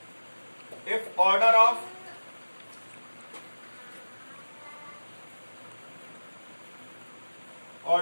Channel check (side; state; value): both; inverted; correlation -1.00